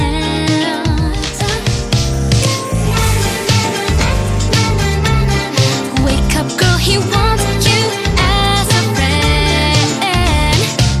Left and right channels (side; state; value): both; identical; correlation 1.00